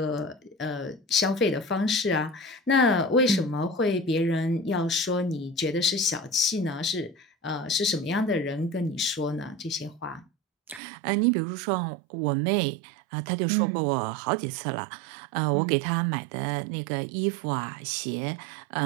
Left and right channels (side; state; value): left; drops out; at 10.8 s